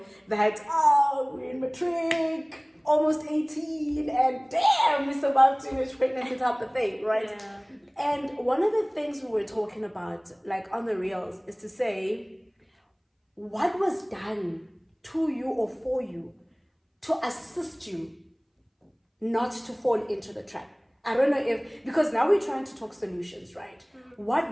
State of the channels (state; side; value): identical; both; correlation 1.00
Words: that, we're in matric, almost 18, and damn, we survived teenage pregnancy type of thing, right? Yeah. And one of the things we were talking about, like on the reels, is to say, what was done to you or for you to assist you not to fall into the trap? I don't know because now we're trying to talk solutions, right?